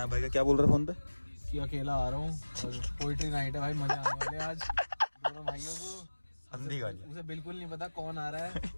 भाई का, क्या बोल रहा है फोन पे? कि अकेला आ रहा हूँ और पोएट्री नाइट है भाई, मजा आने वाले आज दोनों भाइयों को। अंधी गाली। उसे बिल्कुल नहीं पता कौन आ रहा है,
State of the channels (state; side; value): inverted; both; correlation -1.00